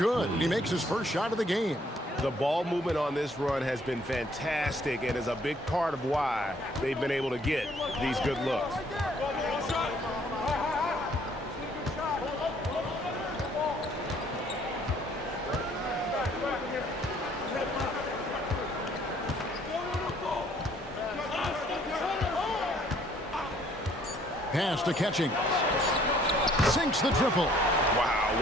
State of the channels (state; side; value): normal; both; correlation 0.62